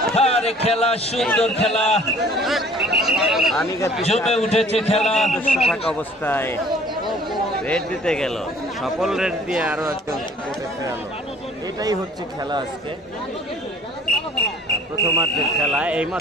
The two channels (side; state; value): both; normal; correlation 0.53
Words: আরে খেলা, সুন্দর খেলা, জমে উঠেছে খেলা। থাকা অবস্থায় রেড দিতে গেল, সকল রেড দিয়ে আরো একজন কোর্টে ফেরালো। এটাই হচ্ছে খেলা আজকে, প্রথমার্ধের খেলা।